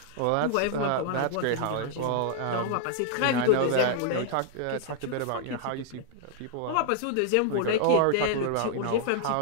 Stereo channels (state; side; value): different; both; correlation -0.01